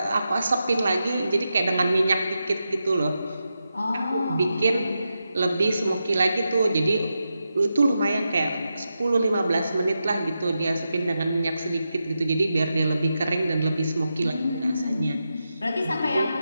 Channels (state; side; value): inverted; both; correlation -0.88